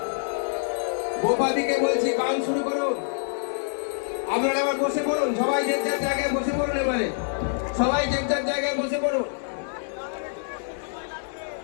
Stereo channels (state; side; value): silent; right; digital silence